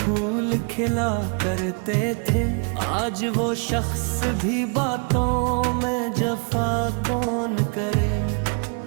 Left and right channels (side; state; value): left; quieter; 37.8 dB